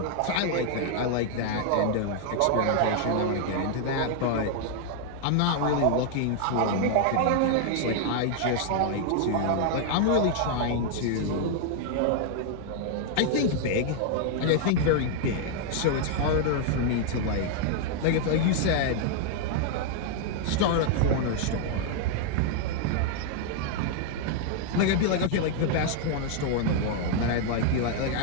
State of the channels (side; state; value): both; different; correlation 0.00